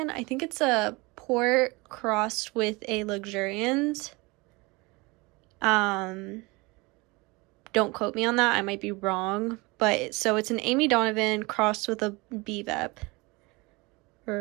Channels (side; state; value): left; quieter; 25.2 dB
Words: I think it's a port crossed with a luxurians. Don't quote me on that, I might be wrong. But so it's an Amy Donovan crossed with a BVEP